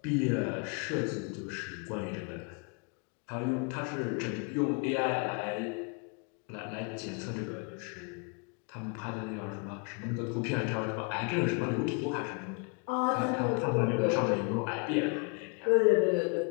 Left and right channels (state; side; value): quieter; right; 34.9 dB